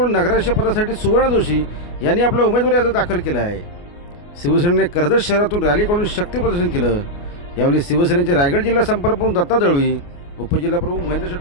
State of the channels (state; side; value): late; right; 29 ms